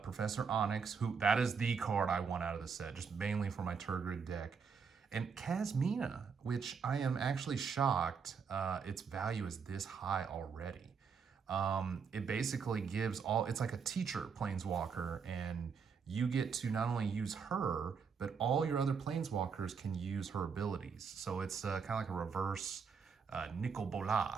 Professor Onyx, who, that is the card I want out of the set, just mainly for my Turgid deck. And Kasmina, which I am actually shocked its value is this high already. It basically gives all, it's like a teacher planeswalker, and you get to not only use her, but all your other planeswalkers can use her abilities. So it's kind of like a reverse Nicol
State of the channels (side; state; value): left; quieter; 6.0 dB